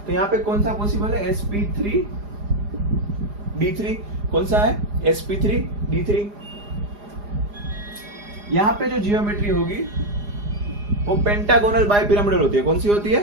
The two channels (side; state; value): left; late; 4.9 ms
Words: तो यहाँ पे कौन सा पॉसिबल है, sp3d3। कौन सा है, sp3d3। यहाँ पे जो जियोमेट्री होगी वो पेंटागोनल बाइपिरामिडल होती है। कौन सी होती है,